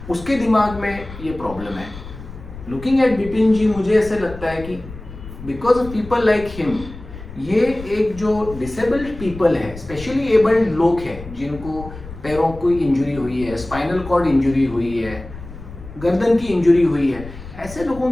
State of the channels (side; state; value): left; noise; rumble, 14 dB below the sound